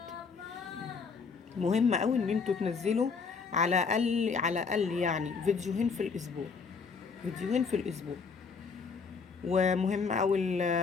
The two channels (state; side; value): quieter; right; 5.2 dB